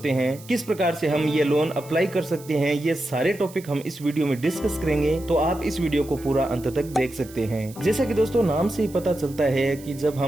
हैं, किस प्रकार से हम ये लोन अप्लाई कर सकते हैं। ये सारे टॉपिक हम इस वीडियो में डिस्कस करेंगे, तो आप इस वीडियो को पूरा अंत तक देख सकते हैं। जैसा कि दोस्तों नाम से ही पता चलता है कि जब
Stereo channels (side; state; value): right; noise; hiss, 20 dB below the sound